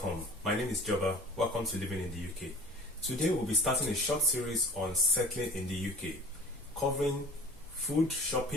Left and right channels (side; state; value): both; normal; correlation 0.43